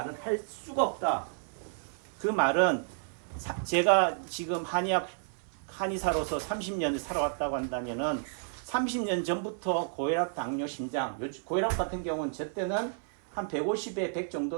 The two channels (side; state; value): left; silent; 57 dB below the other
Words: 할 수가 없다. 그 말은 제가 지금 한의사로서 30년을 살아왔다고 한다면은 30년 전부터 고혈압, 당뇨, 심장, 고혈압 같은 경우는 저 때는 한 150에 100